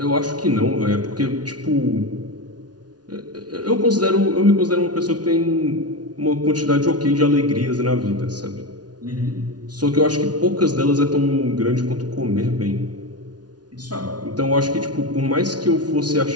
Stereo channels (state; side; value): late; left; 0.69 ms